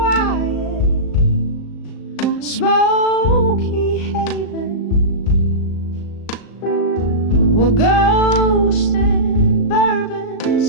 smoky haven, where ghosts and bourbon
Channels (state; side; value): late; right; 36 ms